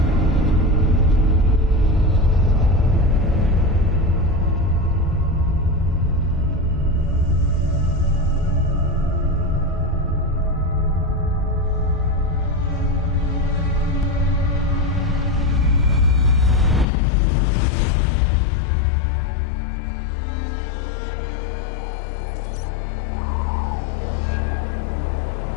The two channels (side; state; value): right; drops out; at 16.9 s